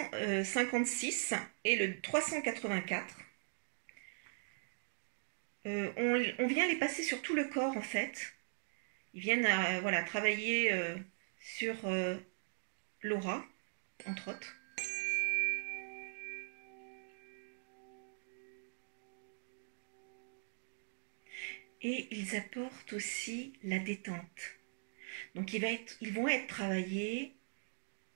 et le 384. On vient les passer sur tout le corps en fait. Ils viennent voilà, travailler sur l'aura, entre autres. Et ils apportent aussi la détente. Donc ils vont être travaillés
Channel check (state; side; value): silent; left; digital silence